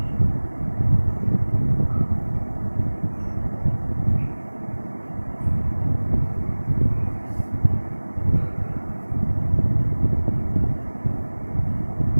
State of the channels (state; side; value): inverted; both; correlation -1.00